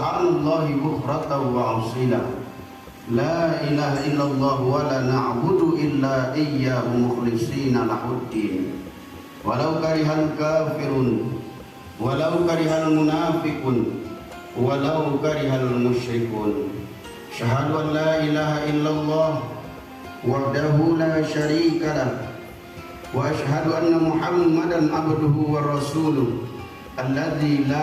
bukratan wa asila. La ilaha illallah wa la na'budu illa iyyahu mukhlishina lahuddin. Walau karihal kafirun, walau karihal munafiqun, walau karihal musyrikun. Syahadu an la ilaha illallah wahdahu la syarika lah, wa asyhadu anna Muhammadan abduhu wa rasuluh alladzi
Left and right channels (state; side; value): identical; both; correlation 1.00